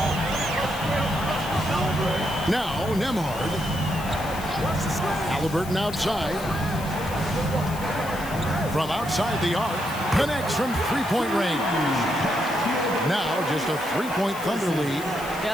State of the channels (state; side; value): noise; left; hiss, 15 dB below the sound